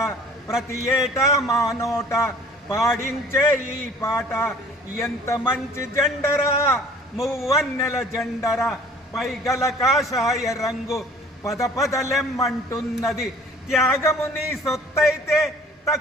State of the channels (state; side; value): normal; both; correlation 0.51